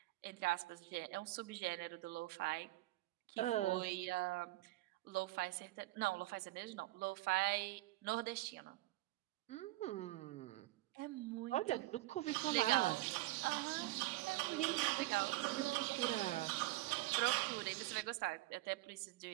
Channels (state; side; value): quieter; left; 18.8 dB